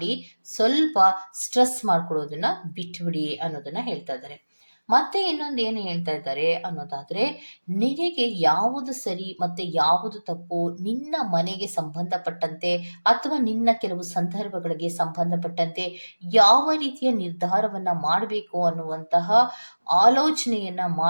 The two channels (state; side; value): inverted; both; correlation -1.00